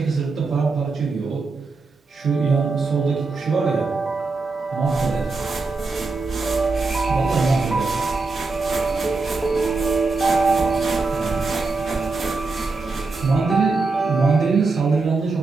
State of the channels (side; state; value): left; quieter; 3.9 dB